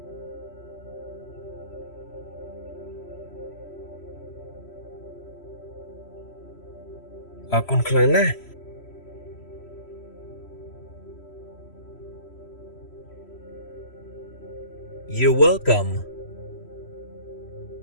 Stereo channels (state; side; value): late; right; 3.0 ms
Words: អរគុណខ្លាំងណាស់ You're welcome.